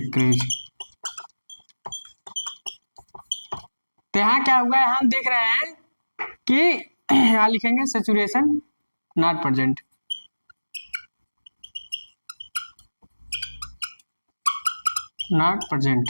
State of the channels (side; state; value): both; inverted; correlation -1.00